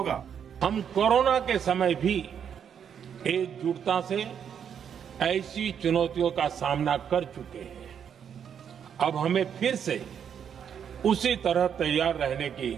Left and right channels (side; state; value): left; quieter; 8.1 dB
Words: हम कोरोना के समय भी एकजुटता से ऐसी चुनौतियों का सामना कर चुके हैं। अब हमें फिर से उसी तरह तैयार रहने की